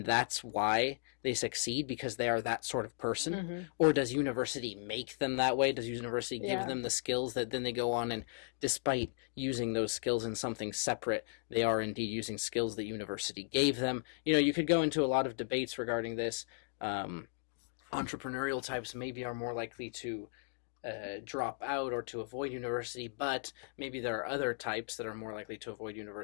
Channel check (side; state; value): right; silent; digital silence